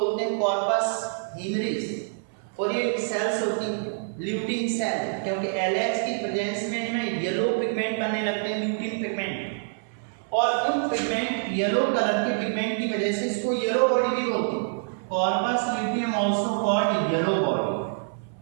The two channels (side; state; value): left; silent; 61 dB below the other